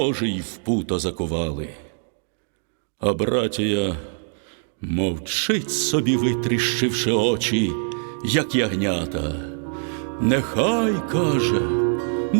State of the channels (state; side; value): silent; left; digital silence